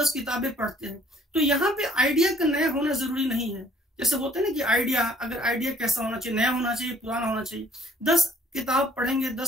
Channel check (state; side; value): normal; both; correlation 0.60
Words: किताबें पढ़ते हैं। तो यहाँ पे आइडिया का नया होना जरूरी नहीं है। जैसे होता है ना कि आइडिया, अगर आइडिया कैसा होना चाहिए, नया होना चाहिए, पुराना होना चाहिए। 10 किताब पढ़ेंगे,